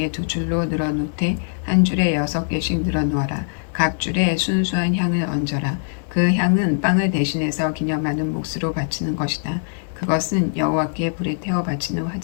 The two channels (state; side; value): silent; right; digital silence